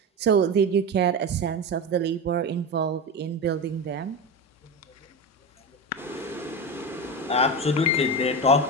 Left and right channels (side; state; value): both; normal; correlation 0.21